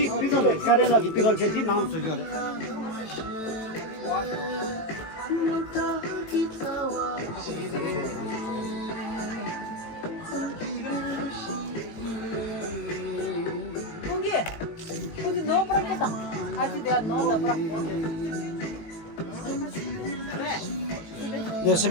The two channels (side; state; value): right; late; 18 ms